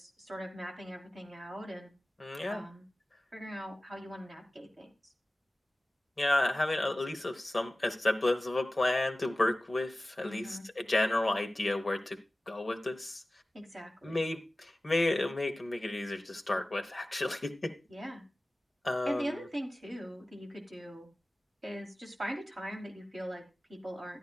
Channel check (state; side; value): normal; both; correlation 0.97